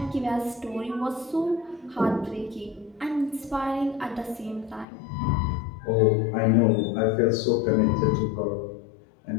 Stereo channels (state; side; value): drops out; right; at 4.9 s